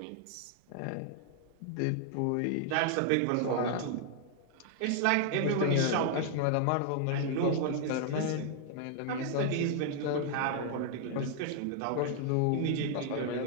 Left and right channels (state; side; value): different; both; correlation -0.01